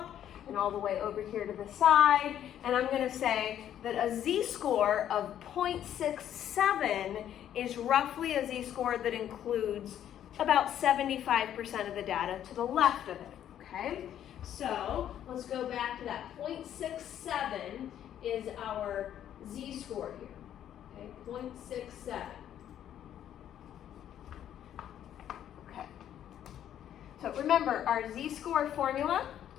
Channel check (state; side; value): quieter; right; 10.6 dB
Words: and all the way over here to the side. And I'm going to say that a z-score of 0.67 is roughly a z-score that includes about 75% of the data to the left of it, okay? So let's go back to that. 0.67 is our z-score here, okay? 0.67. Okay. So remember, our z-score formula